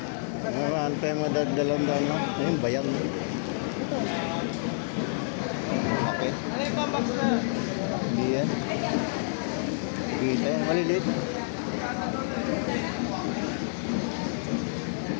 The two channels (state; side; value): silent; right; digital silence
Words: Ano tayo madadalan-dalan no? Ayun, bayang. Okay. Ano yung pambox na? Hindi yan. Kita yan. Malilit.